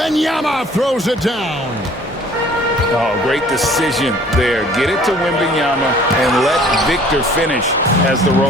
throws it down. Oh, great decision there. Get it to Wembanyama and let Victor finish as the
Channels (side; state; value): both; normal; correlation 0.53